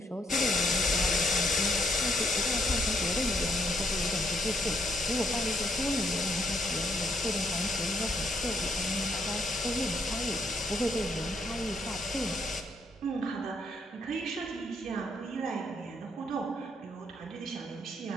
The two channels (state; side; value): normal; both; correlation 0.72